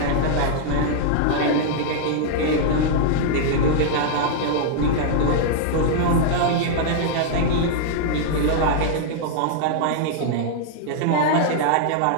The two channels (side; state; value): both; different; correlation -0.01